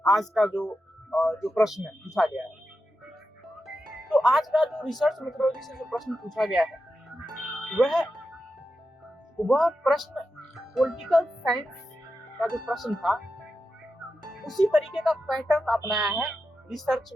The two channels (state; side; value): normal; both; correlation 0.89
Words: आज का जो प्रश्न पूछा गया है। तो आज का जो रिसर्च मेथोडोलॉजी से जो प्रश्न पूछा गया है वह प्रश्न पॉलिटिकल साइंस का जो प्रश्न था उसी तरीके का पैटर्न अपनाया है रिसर्च